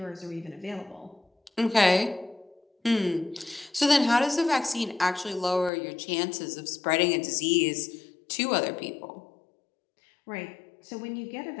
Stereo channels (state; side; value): drops out; right; at 5.7 s